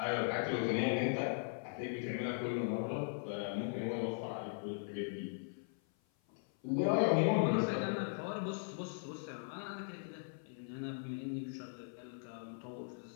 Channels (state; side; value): silent; right; 52 dB below the other